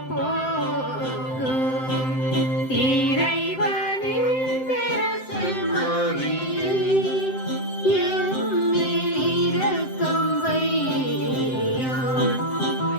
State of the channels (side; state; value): right; late; 7.7 ms